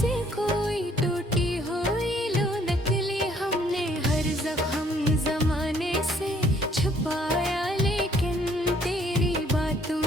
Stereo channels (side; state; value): both; normal; correlation 0.63